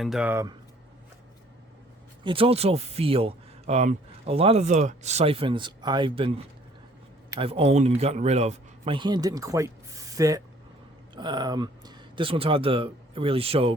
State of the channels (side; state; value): both; normal; correlation 0.58